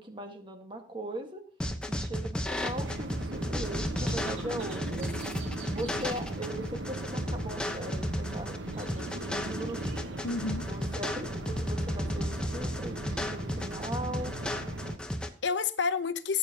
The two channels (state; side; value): normal; both; correlation 0.56